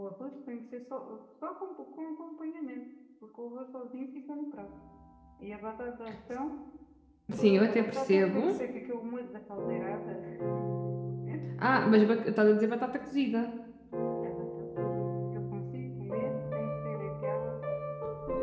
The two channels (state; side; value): identical; both; correlation 1.00